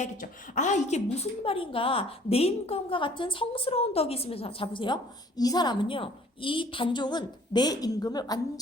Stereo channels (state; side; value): normal; both; correlation 0.55